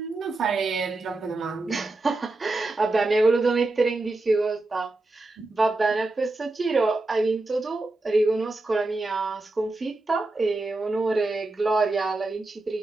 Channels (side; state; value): left; quieter; 3.0 dB